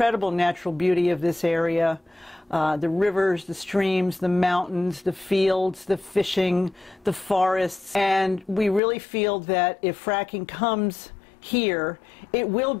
natural beauty of this area, the rivers, the streams, the mountains, the fields, the fishing, the forests, and we really feel that if fracking comes here, it will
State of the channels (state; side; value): drops out; right; at 8.8 s